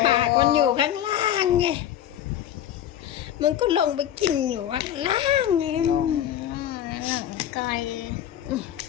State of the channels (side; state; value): right; quieter; 11.0 dB